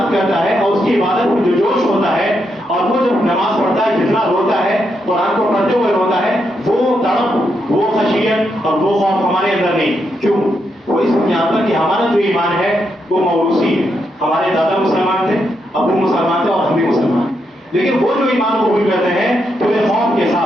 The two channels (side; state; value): both; normal; correlation 0.81